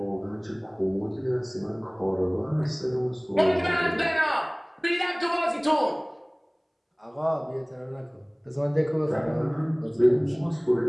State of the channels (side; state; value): both; identical; correlation 1.00